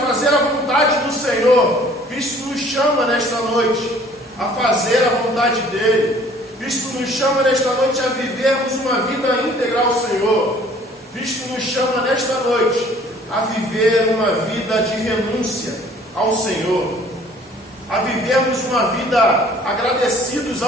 a vontade do Senhor, Cristo nos chama nesta noite a fazer a vontade dEle. Cristo nos chama nesta noite a vivermos uma vida íntegra ao Senhor. Cristo nos chama nesta noite a viver uma vida de renúncia ao Senhor, a vivermos uma vida agradecidos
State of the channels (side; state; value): both; normal; correlation 0.54